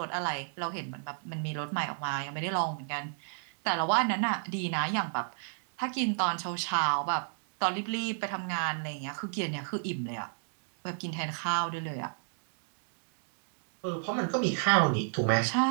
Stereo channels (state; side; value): silent; left; digital silence